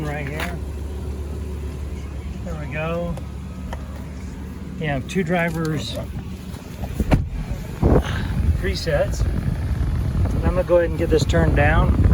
right here. There we go. You have 2 drivers presets. I'm going to go ahead and get this turned down.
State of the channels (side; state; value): both; identical; correlation 1.00